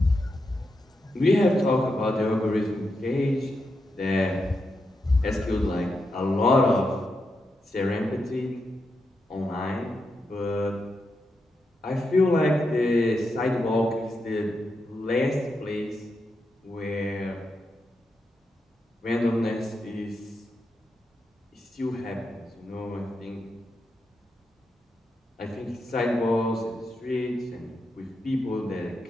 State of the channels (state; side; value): normal; both; correlation 0.85